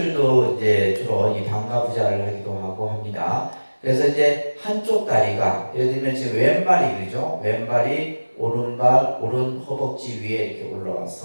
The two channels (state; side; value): inverted; both; correlation -1.00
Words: 이제 주로 이 반가부좌를 하기도 하고 합니다. 그래서 이제 한쪽 다리가 예를 들면 지금 왼발이 그죠? 왼발이 오른발 오른 허벅지 위에 이렇게